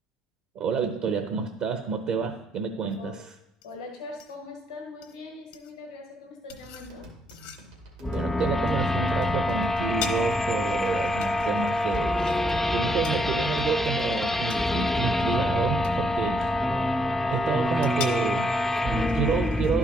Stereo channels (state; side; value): normal; both; correlation 0.74